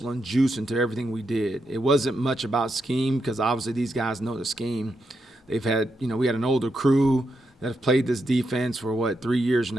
and juice into everything we did. It wasn't much about scheme because obviously these guys know the scheme. They've had, we had an older crew that have played this defense for 3 years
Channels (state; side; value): normal; both; correlation 0.83